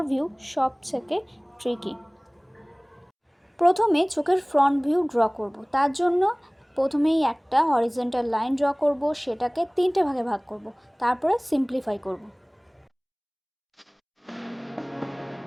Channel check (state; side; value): identical; both; correlation 1.00